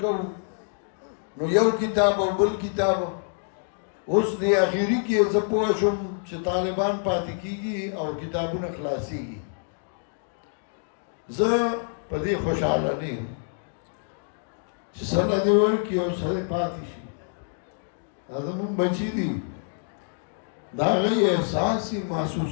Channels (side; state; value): right; silent; digital silence